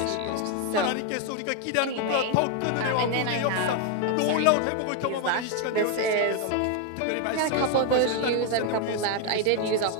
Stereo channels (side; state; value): both; different; correlation 0.00